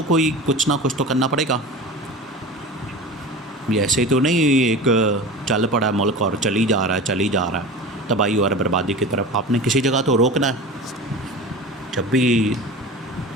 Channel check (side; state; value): both; normal; correlation 0.33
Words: कोई कुछ ना कुछ तो करना पड़ेगा। ये ऐसे तो नहीं एक चल पड़ा मुल्क और चली जा रहा है तबाही और बर्बादी की तरफ। आपने किसी जगह तो रोकना है। जब भी